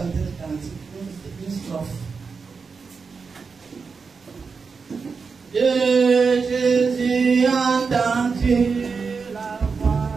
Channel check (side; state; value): left; quieter; 5.1 dB